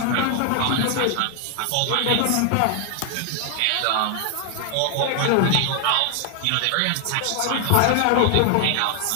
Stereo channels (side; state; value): both; different; correlation 0.00